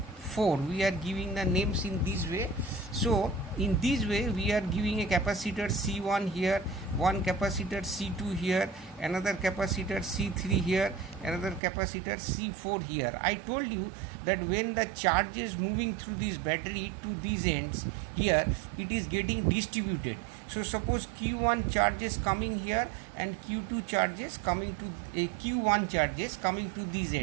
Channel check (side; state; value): left; drops out; at 11.6 s